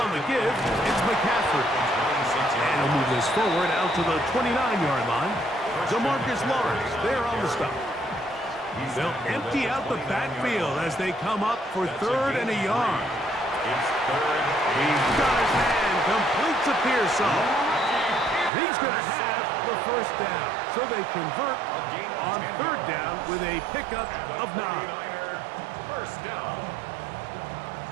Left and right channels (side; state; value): left; drops out; at 18.5 s